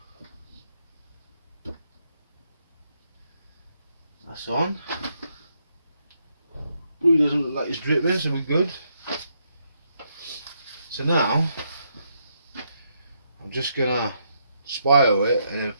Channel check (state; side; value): inverted; both; correlation -0.78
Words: That's on. Glue doesn't look like it's dripping, so we're good. So now I'm just gonna spiral it and then